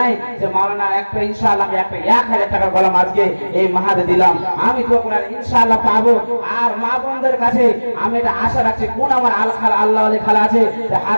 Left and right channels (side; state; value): both; inverted; correlation -1.00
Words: যে মাওলানা একটা ইনশাআল্লাহ আমি একটা 1000 টাকার কলম আজকে এই মাহাদে দিলাম, আমি দোয়া করে ইনশাআল্লাহ পাবো। আর মা বোনদের কাছে আমি এটা আশা রাখছি, কোন আমার আল্লাহ আলী খালা আছে যে